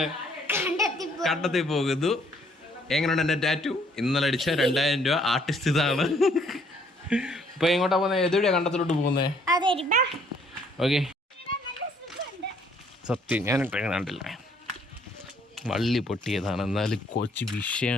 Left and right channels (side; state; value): both; normal; correlation 0.64